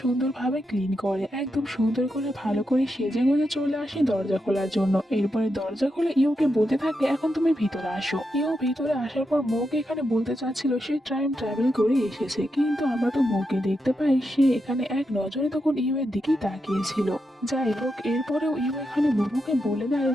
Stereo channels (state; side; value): normal; both; correlation 0.85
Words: সুন্দরভাবে ক্লিন করে একদম সুন্দর করে ভালো করে সেজে গুজে চলে আসে দরজা খোলার জন্য। এরপরে দরজা খুলে ইউকে বলতে থাকে এখন তুমি ভিতরে আসো। ইউ ভিতরে আসার পর মৌকে এখানে বলতে চাচ্ছিল সে টাইম ট্রাভেল করে এসেছে, কিন্তু আমরা তো মৌকে দেখতে পাই সে এখানে এক নজরে তখন ইউ এর দিকেই তাকিয়েছিল। যাই হোক, এরপরেও ইউ এখানে মোমোকে বলে দেয়